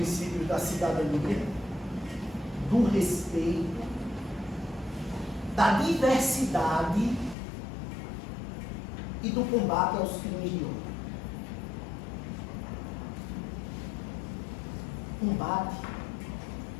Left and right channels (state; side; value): drops out; right; at 7.4 s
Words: da cidadania, do respeito, da diversidade e do combate aos crimes de ódio. Combate